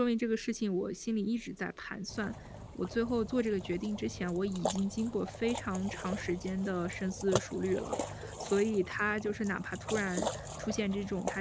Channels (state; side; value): identical; both; correlation 1.00